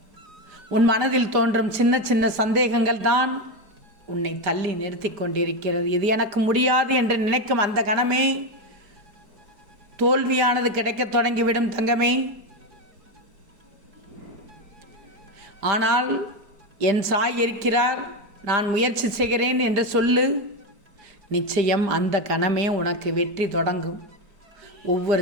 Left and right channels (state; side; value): late; left; 5.0 ms